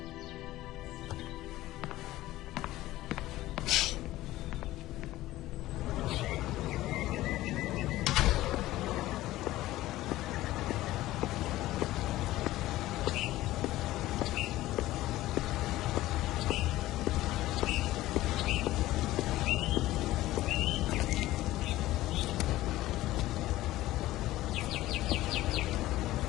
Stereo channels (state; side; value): quieter; right; 16.2 dB